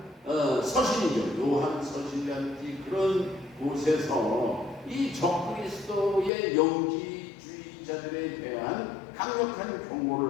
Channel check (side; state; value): right; drops out; at 6.3 s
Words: 서신이죠. 요한 서신이라든지 그런 곳에서 이 적그리스도의 영지주의자들에 대한 강력한